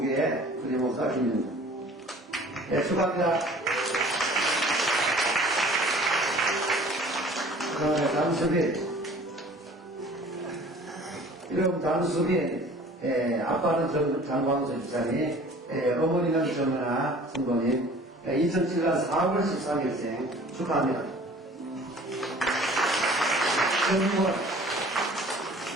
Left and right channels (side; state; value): both; normal; correlation 0.48